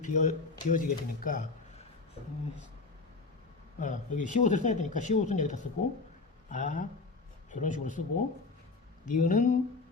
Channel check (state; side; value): quieter; right; 3.9 dB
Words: 비어지게 되니까, 여기 시옷을 써야 되니까 시옷은 여기다 쓰고, 이런 식으로 쓰고, 니은은